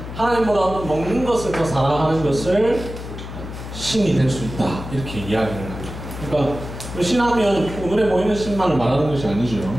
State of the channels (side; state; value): left; noise; hum, 10 dB below the sound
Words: 하나님보다 먹는 것을 더 사랑하는 것을 신이 될 수 있다 이렇게 이야기를 합니다. 그러니까 신하면 눈에 보이는 신만을 말하는 것이 아니죠.